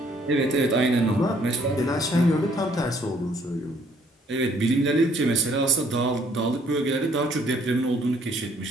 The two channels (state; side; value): normal; both; correlation 0.63